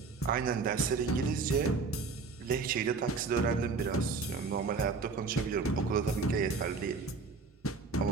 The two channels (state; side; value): quieter; left; 4.5 dB